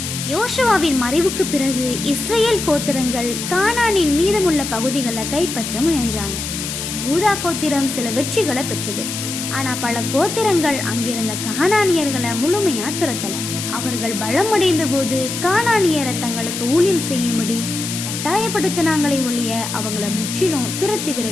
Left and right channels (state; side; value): noise; left; hiss, 5 dB below the sound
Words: யோசுவாவின் மறைவுக்கு பிறகு இஸ்ரேல் கோத்திரங்கள் கானானின் மீதமுள்ள பகுதிகளை கைப்பற்ற முயன்றாங்க. யூதா கோத்திரம் சில வெற்றிகளை பெற்றது. ஆனா பல கோத்திரங்கள் அங்கிருந்த கானானியர்களை முழுமையா துரத்தல. அவர்கள் பலமடைந்த போது கானானியரை தங்களுக்கு ஊழியம் செய்யும்படி கட்டாயப்படுத்தினாங்களே ஒழிய அவங்கள முற்றிலும் துரத்தி